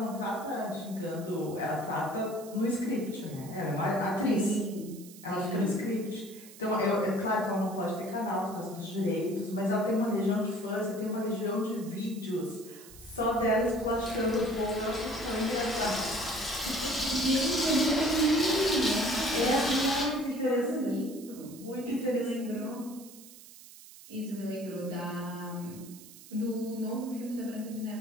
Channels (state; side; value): noise; right; hiss, 18 dB below the sound